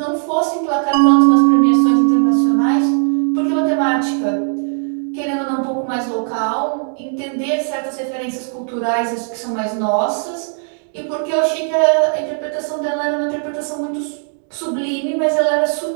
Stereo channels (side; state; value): left; silent; digital silence